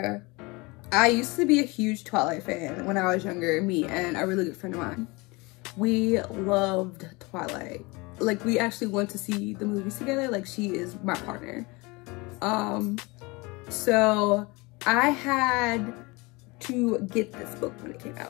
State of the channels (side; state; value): right; quieter; 25.4 dB